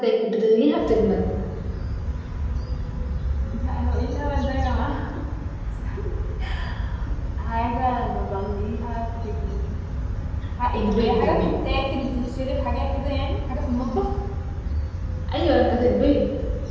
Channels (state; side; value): identical; both; correlation 1.00